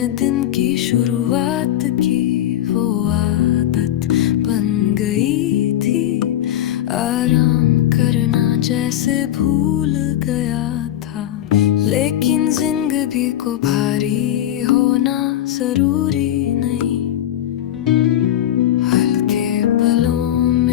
दिन की शुरुआत की। वो आदत बन गई थी, आराम करना जैसे भूल गया था। लेकिन जिंदगी को भारी होना जरूरी नहीं, हल्के पलों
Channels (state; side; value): quieter; right; 12.1 dB